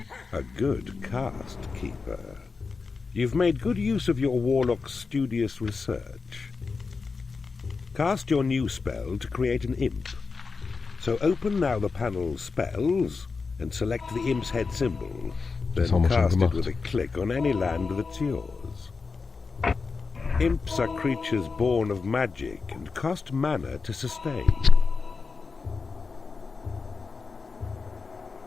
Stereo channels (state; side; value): quieter; right; 4.6 dB